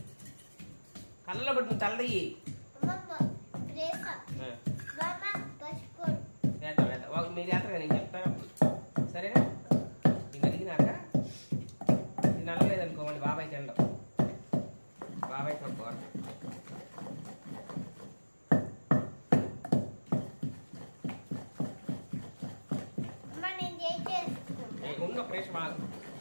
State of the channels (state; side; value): inverted; both; correlation -1.00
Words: కళ్ళలో పడుతుంది తల్లయ్యి. మీరు చేస్తారు నేను చెప్తాను సరేనా. నేను అడిగినాక ఇది నల్లలేదనుకోండి బాబాయ్ తినడం, బాబాయ్ తక్కువ ఉన్న ఫ్రెష్ మాకు